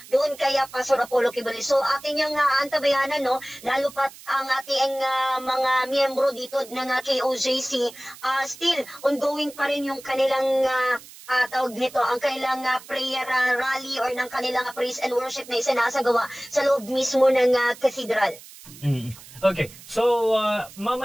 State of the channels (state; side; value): noise; right; hiss, 19 dB below the sound